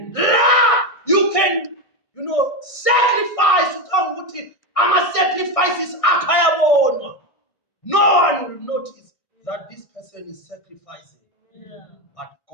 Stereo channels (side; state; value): right; late; 1.6 ms